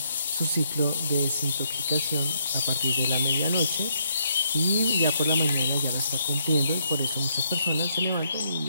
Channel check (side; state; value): both; inverted; correlation -0.74